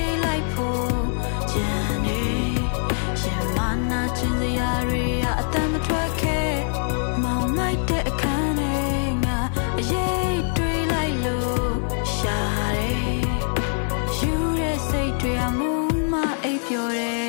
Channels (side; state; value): right; silent; 61 dB below the other